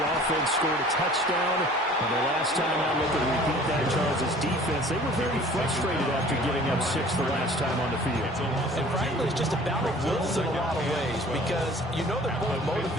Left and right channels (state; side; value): normal; both; correlation 0.49